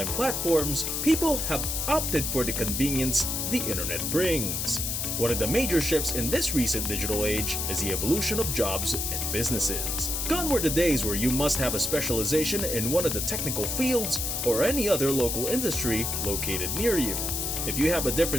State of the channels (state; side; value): noise; left; hiss, 1 dB below the sound